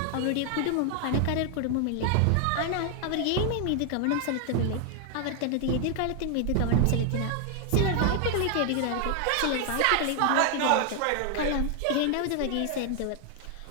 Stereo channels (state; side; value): different; both; correlation 0.00